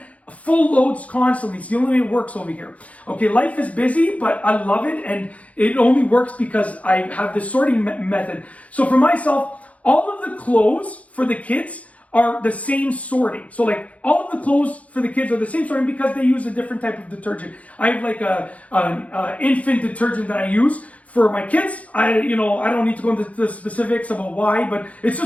full loads constantly. It's the only way it works over here. Okay, life is busy, but I love it, and it only works because I have this sorting method. So for myself, all of the clothes for the kids are the same sorting. So all of the clothes for the kids are the same sorting because they use a different type of detergent. I have an infant detergent that I use for my kids. I don't need to go into the specifics about why, but it's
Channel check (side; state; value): right; late; 0.067 ms